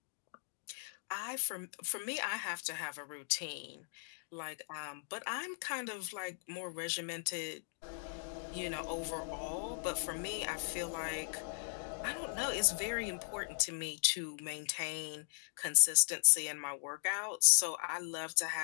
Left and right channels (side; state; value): right; silent; digital silence